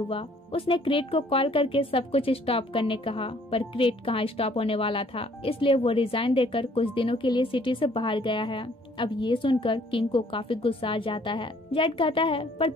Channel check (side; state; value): both; normal; correlation 0.60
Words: उसने क्रेट को कॉल करके सब कुछ स्टॉप करने कहा, पर क्रेट कहाँ स्टॉप होने वाला था, इसलिए वो रिजाइन देकर कुछ दिनों के लिए सिटी से बाहर गया है। अब ये सुनकर किंग को काफी गुस्सा आ जाता है। जेड कहता है, पर